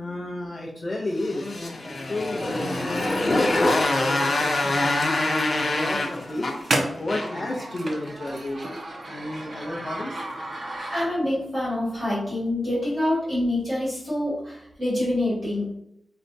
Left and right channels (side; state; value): both; normal; correlation 0.92